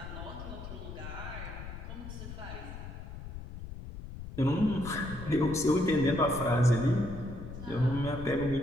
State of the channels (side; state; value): left; noise; rumble, 10 dB below the sound